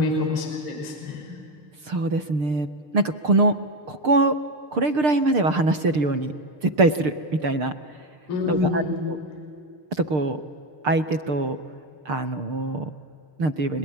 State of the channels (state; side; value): late; left; 6.6 ms